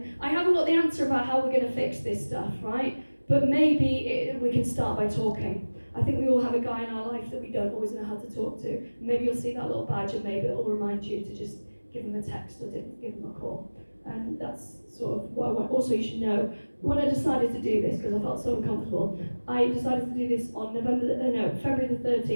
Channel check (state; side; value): inverted; both; correlation -1.00